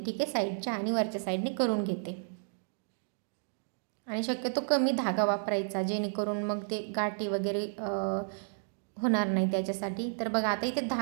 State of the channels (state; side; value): silent; left; digital silence